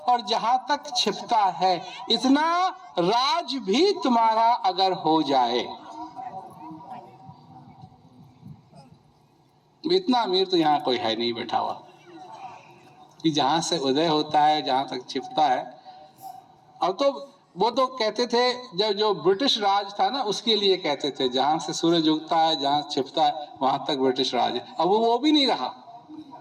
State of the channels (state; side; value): identical; both; correlation 1.00